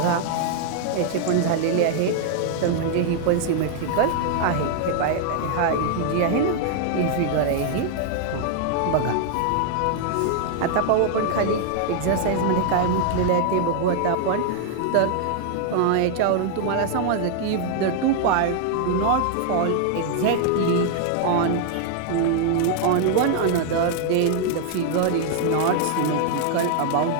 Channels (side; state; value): both; different; correlation 0.00